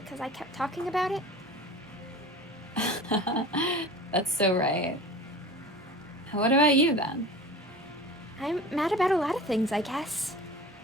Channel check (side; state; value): both; normal; correlation 0.37